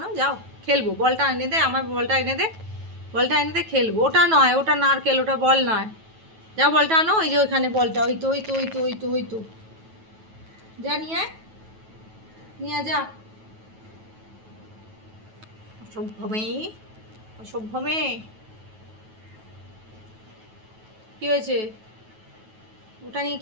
যাও খেলবো, বলটা এনে দে, আমার বলটা এনে দে, বলটা এনে দে খেলবো। ওটা নয়, ওটা নারকেল, ওটা বল নয়, যা বলটা আনো, ওই যে ওইখানে বলটা, ওই তো ওই তো ওই তো ওই তো ওই তো, যা নিয়ে আয়, নিয়ে যা। অসভ্য মেয়ে, অসভ্য মেয়ে। কি হয়েছে, ওটা নিয়ে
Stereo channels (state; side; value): late; left; 9.2 ms